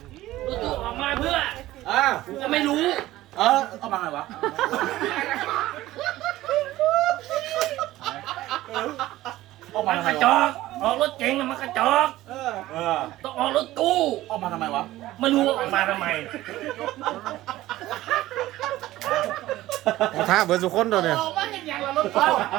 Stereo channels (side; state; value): left; quieter; 16.0 dB